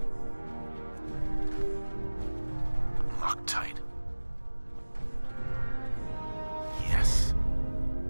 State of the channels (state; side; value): inverted; both; correlation -1.00